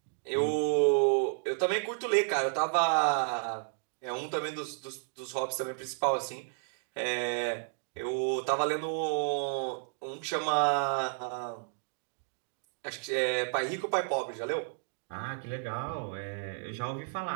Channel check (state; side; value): silent; left; digital silence